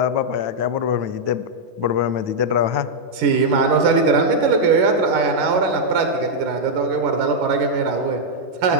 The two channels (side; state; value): left; late; 11 ms